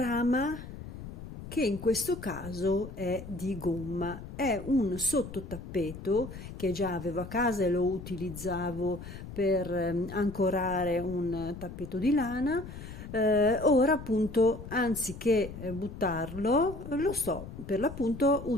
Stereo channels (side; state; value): left; noise; rumble, 12 dB below the sound